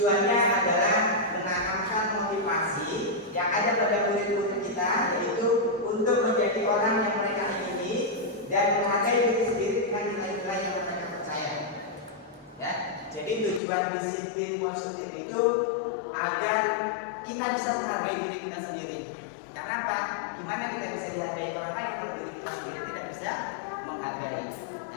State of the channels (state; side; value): drops out; right; at 13.6 s